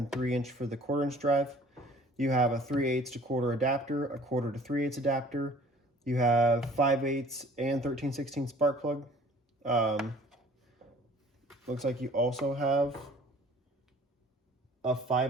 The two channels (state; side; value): normal; both; correlation 0.51